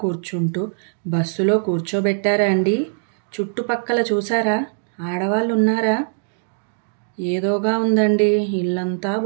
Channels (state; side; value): silent; left; digital silence